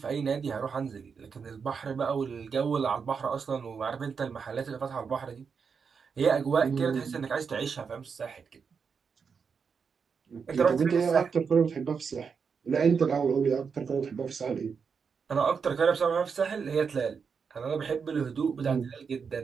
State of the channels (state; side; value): quieter; left; 5.9 dB